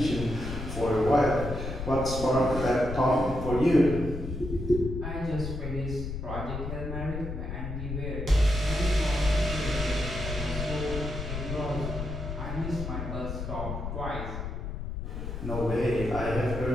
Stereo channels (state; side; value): noise; left; rumble, 5 dB below the sound